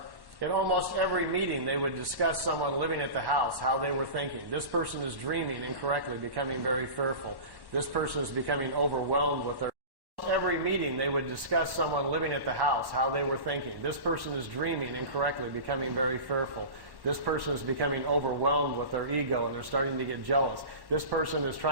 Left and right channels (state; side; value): late; left; 1.1 ms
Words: In almost every meeting, they would discuss someone living at the house, how they were thinking. This person is dreaming incorrectly, becoming very fearful. This person is becoming overwhelmed with their... Every meeting, they would discuss someone living at the house, how they were thinking. This person is dreaming incorrectly, becoming very fearful. This person is becoming overwhelmed with their ego, and they're starting to get jealous. This person is